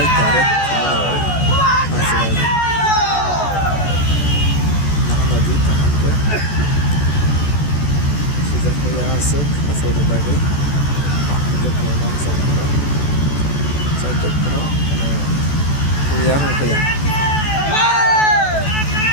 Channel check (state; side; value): late; right; 14 ms